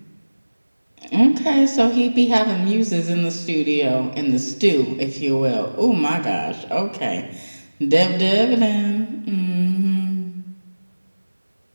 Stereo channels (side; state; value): both; inverted; correlation -1.00